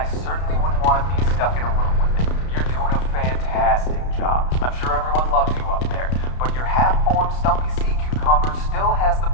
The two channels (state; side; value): late; right; 32 ms